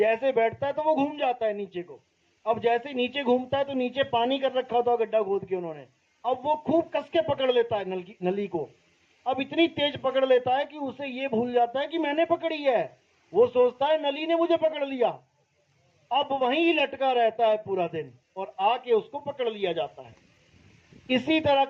बैठता है तो वो घूम जाता है नीचे को। अब जैसे नीचे घूमता है तो नीचे पानी कर रखा होता है गड्ढा खोद के उन्होंने, अब वो खूब कस के पकड़ लेता है नली को। अब इतनी तेज पकड़ लेता है कि उसे ये भूल जाता है कि मैंने पकड़ी है, वो सोचता है नली ने मुझे पकड़ लिया। अब वहीं लटका रहता है पूरा दिन और आके उसको पकड़ लिया जाता है। इसी तरह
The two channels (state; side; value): identical; both; correlation 1.00